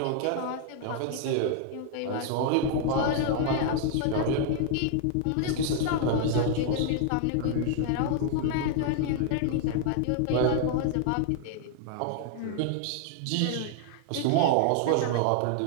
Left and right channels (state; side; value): different; both; correlation 0.00